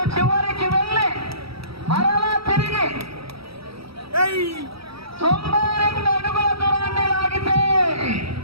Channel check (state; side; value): late; left; 0.76 ms